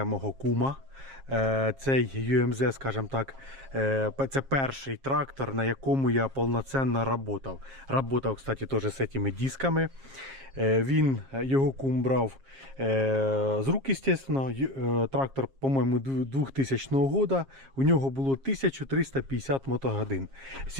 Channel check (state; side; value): late; left; 7.4 ms